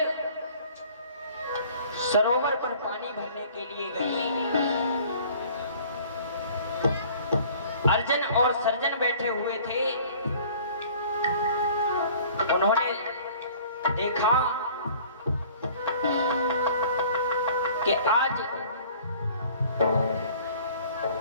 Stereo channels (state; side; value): inverted; both; correlation -0.51